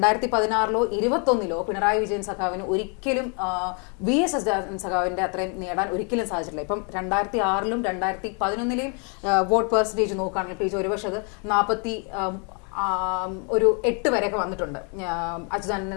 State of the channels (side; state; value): right; quieter; 37.7 dB